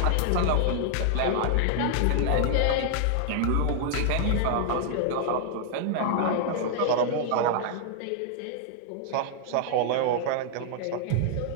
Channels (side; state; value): both; different; correlation -0.01